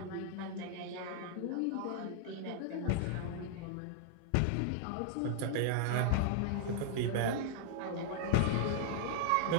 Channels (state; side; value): different; both; correlation 0.00